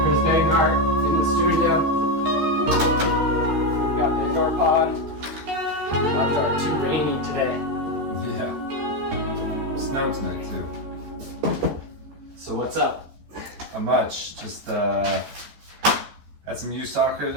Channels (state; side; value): late; left; 13 ms